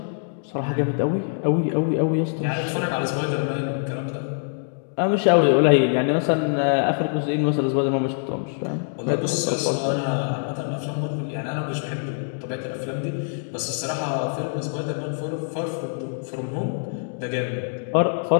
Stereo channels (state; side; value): silent; right; digital silence